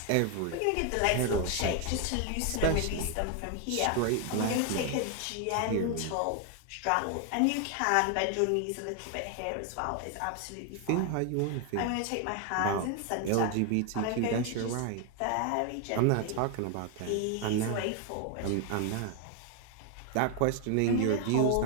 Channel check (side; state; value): both; different; correlation 0.01